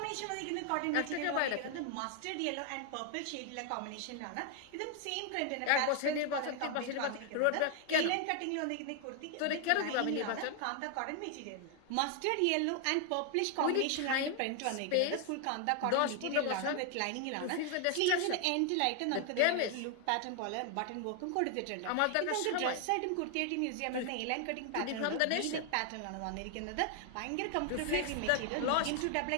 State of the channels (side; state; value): both; different; correlation 0.00